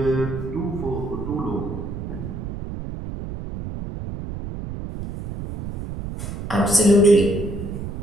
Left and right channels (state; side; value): noise; right; rumble, 7 dB below the sound